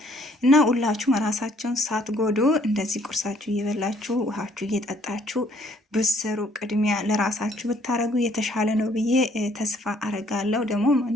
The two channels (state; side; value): normal; both; correlation 0.63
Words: እና ሁላችሁም ራሳችሁን ሳትጎዱ እንደዚህ ቁርሳችሁ እየበላችሁ ውሃችሁ እየጠጣችሁ ብትሰሩ ቅድሚያ ለራሳችሁ ብታረጉ የተሻለ ነው ብዬ ተስፋ አረጋለሁ። ደግሞ